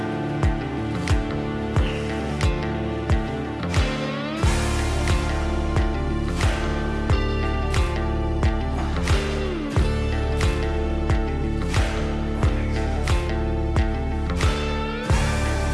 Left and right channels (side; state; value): both; identical; correlation 1.00